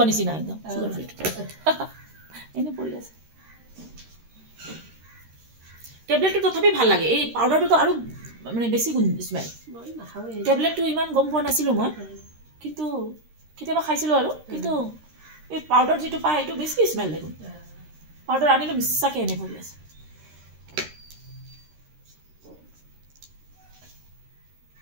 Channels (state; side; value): late; left; 13 ms